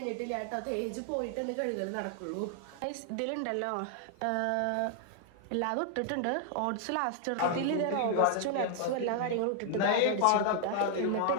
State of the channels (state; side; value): different; both; correlation 0.00